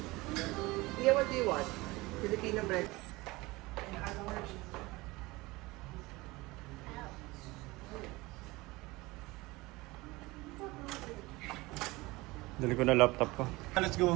Yeah, what do you want? Filipino bread. Dali ko na laptop ko. Let's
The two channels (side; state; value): left; quieter; 21.7 dB